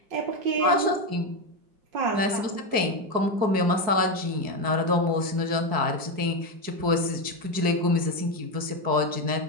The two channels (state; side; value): late; left; 4.7 ms